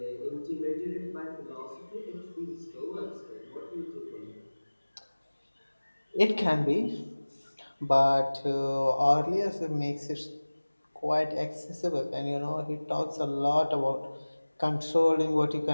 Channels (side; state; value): both; inverted; correlation -1.00